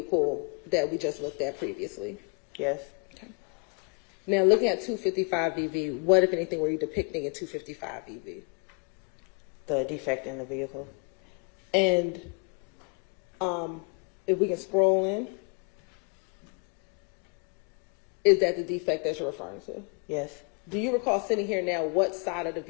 that we just looked at previously? Yes. Okay. Now, looking at 255 VV, what, if anything, were you depicting in 255 VV? The defect in the vehicle. And if we can scroll in, is that the defect that you're referring to? Yes. Do you recall sitting here now what side of the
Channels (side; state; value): right; quieter; 36.5 dB